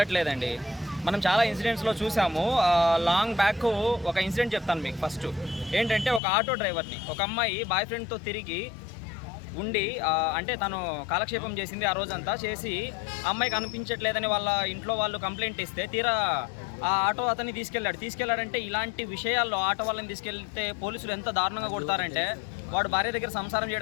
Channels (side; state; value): right; drops out; at 6.2 s